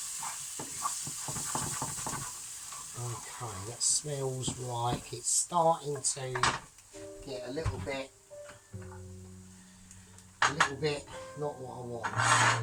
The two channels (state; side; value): identical; both; correlation 1.00